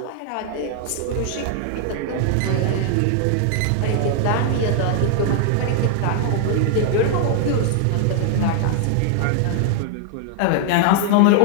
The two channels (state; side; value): different; both; correlation 0.00